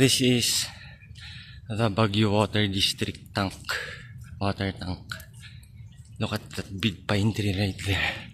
is the Baguio Water District water tank. Look at that big pine tree right there.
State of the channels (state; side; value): identical; both; correlation 1.00